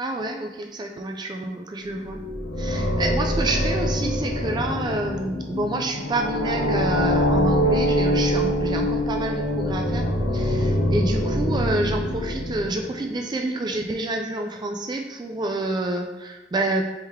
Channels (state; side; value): normal; both; correlation 0.52